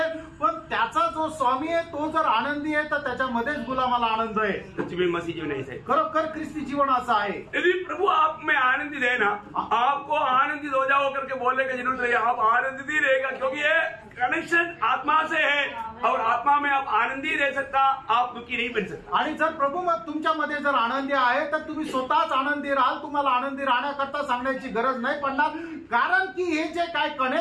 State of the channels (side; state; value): both; identical; correlation 1.00